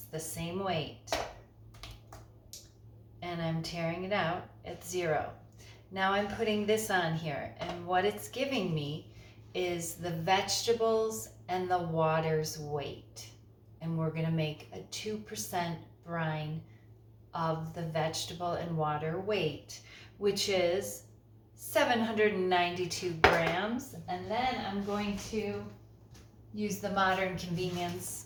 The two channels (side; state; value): both; identical; correlation 1.00